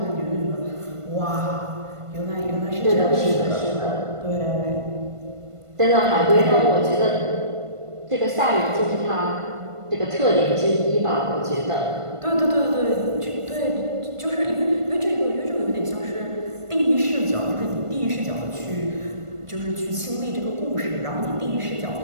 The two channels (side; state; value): left; late; 1.5 ms